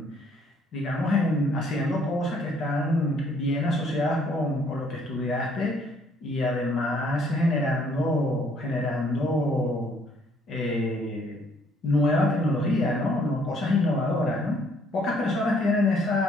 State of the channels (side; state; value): both; normal; correlation 0.64